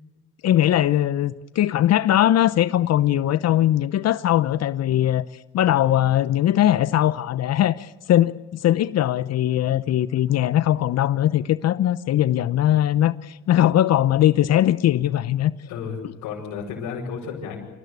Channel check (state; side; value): quieter; right; 11.9 dB